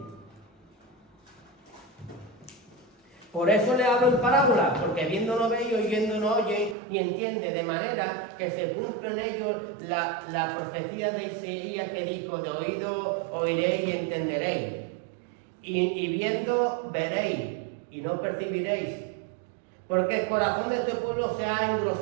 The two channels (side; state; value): left; drops out; at 6.8 s